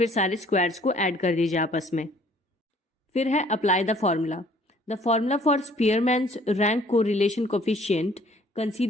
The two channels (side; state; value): both; normal; correlation 0.58